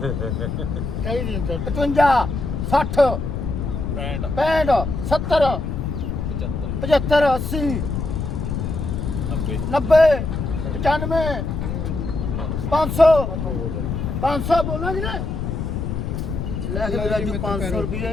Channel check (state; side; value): noise; left; rumble, 3 dB below the sound